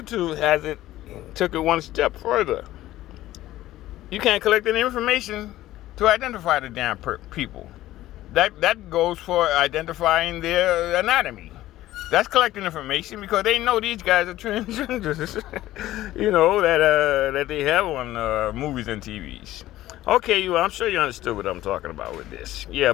took it one step further. You can't collect any information to identify the damn people. That goes for identifying their anatomy. That's collecting information because they know these guys are transgenders. You know that they have on movies and TVs. Okay, I'm sure you understood what I'm talking about with this. Yeah,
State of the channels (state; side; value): quieter; right; 15.1 dB